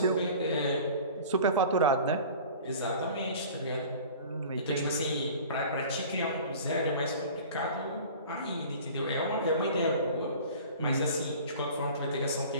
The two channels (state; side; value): inverted; both; correlation -0.42